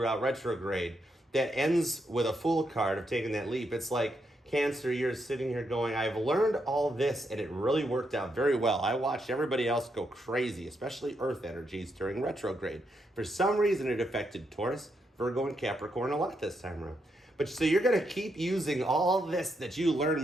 retrograde that ends with a Fool card of taking that leap, it's like, Cancer, you're sitting here going, I've learned all this, and it really worked out very well. I watched everybody else go crazy, especially Earth energies during retrograde. For some reason, it affected Taurus, Virgo, and Capricorn a lot this time around. But so you're going to keep using all this that you learn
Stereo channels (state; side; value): normal; both; correlation 0.80